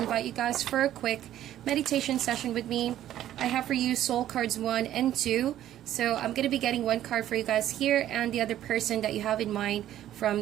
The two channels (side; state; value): left; quieter; 12.3 dB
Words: you guys for a quick meditation session with me. I have for you soul cards 1 and 2. So I'm going to be getting one card for you guys here and the other person that you have in mind